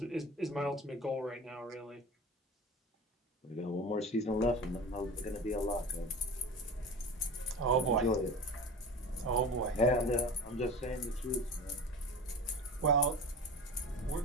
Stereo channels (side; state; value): both; normal; correlation 0.33